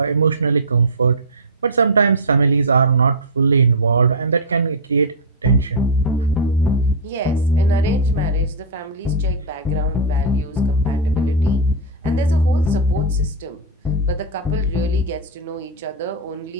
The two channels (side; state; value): both; normal; correlation -0.06